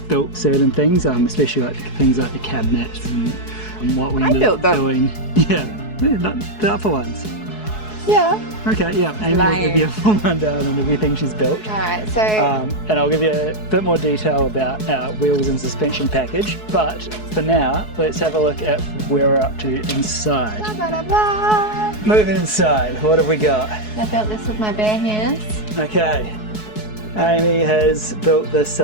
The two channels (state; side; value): late; right; 4.7 ms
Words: built certain things, especially like things like the cabinets and what we ended up doing. Yeah, not the upper ones. Yeah. Okay, yeah, Amy will give you a full rundown on everything she's built. Alright, so... and I'll give you a bit more detail about our wheels and suspension package, but for now, let's have a look at where we're up to inside. Moving inside, what have we got? I built this with my bare hands. Okay, Amy has built this